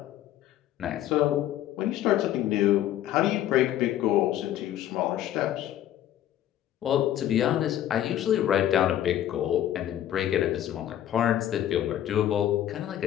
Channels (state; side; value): quieter; right; 11.9 dB